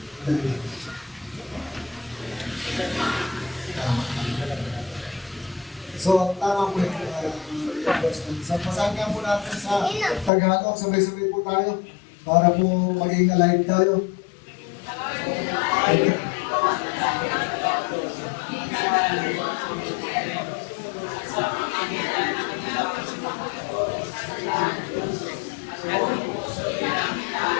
So, ang tama po yung question. So, pasanggan po natin sa Tagalog. Sabay-sabay po tayo para po maging alive tayo.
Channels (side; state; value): right; drops out; at 10.3 s